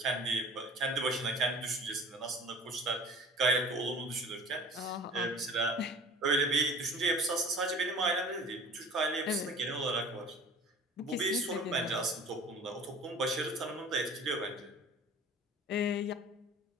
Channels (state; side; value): normal; both; correlation 0.44